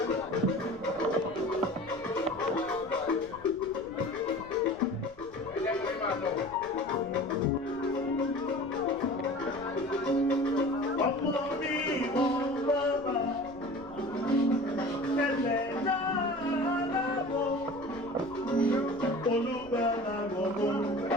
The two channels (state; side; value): noise; left; rumble, 22 dB below the sound